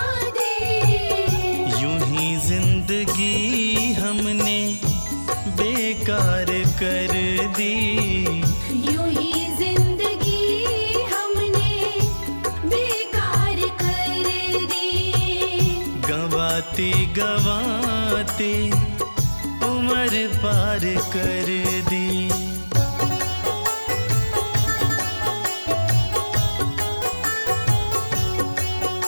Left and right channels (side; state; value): both; inverted; correlation -1.00